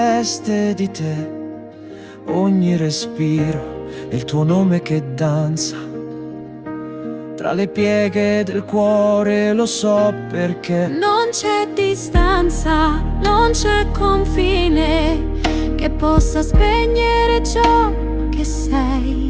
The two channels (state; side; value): identical; both; correlation 1.00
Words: di te, ogni respiro è il tuo nome che danza tra le pieghe del cuore, lo so perché non c'è distanza, non c'è confine che possa spegnere ciò che sei.